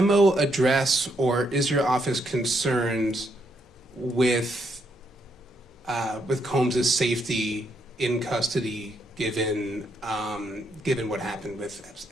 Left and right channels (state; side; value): normal; both; correlation 0.76